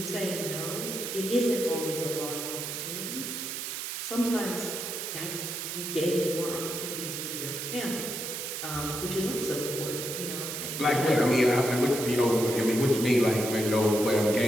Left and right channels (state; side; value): noise; right; hiss, 5 dB below the sound